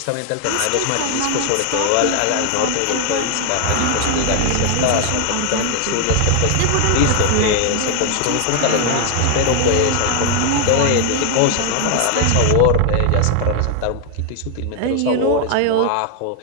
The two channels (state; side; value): different; both; correlation 0.00